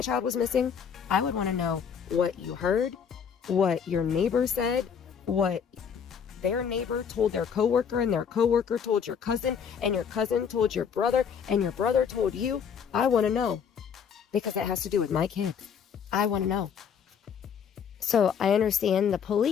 child was missing, I would want to know what you heard, what your neighbor said, what their neighbor told their coworker, and their coworker told your cousin, and your cousin told your brother, and your brother told you. I want to know, because it has to do with my kid. I want to know. So I understand the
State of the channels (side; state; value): right; quieter; 7.2 dB